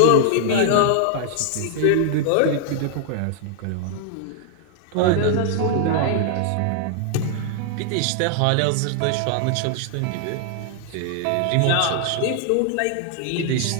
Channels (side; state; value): both; different; correlation 0.00